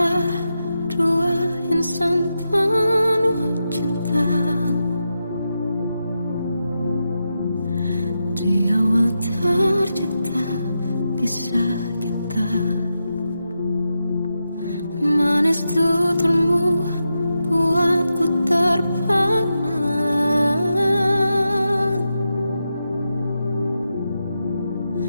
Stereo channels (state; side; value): inverted; both; correlation -0.88